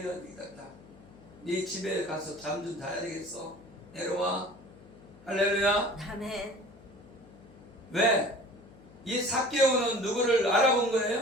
되겠다. 네 집에 가서 잠 좀 자야 되겠어. 내려와. 할렐루야. 아멘. 왜? 이 삭개오는 누구를 알아본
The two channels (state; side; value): noise; left; hum, 23 dB below the sound